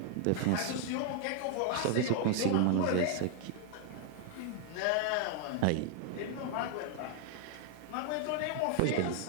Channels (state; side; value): different; both; correlation 0.00